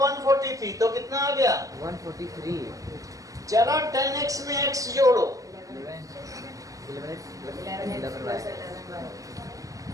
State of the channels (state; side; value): late; left; 0.16 ms